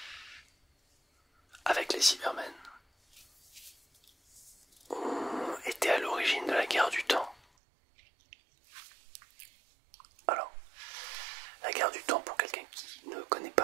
avec les Cybermen, ont été à l'origine de la guerre du temps. Alors, la guerre du temps, pour quelqu'un qui ne connaît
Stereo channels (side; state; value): left; drops out; at 7.4 s